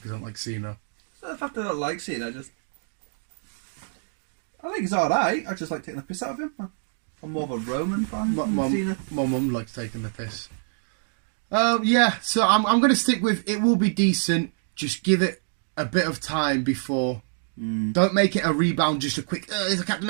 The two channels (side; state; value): left; silent; digital silence